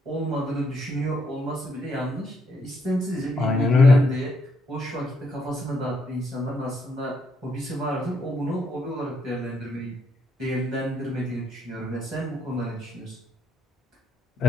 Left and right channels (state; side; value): normal; both; correlation 0.75